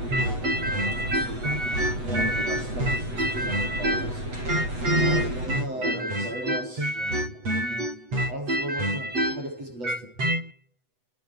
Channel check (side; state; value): left; late; 8.1 ms